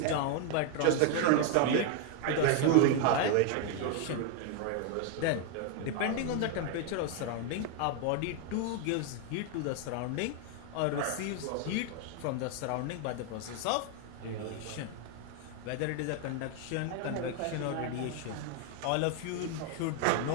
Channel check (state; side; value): different; both; correlation 0.00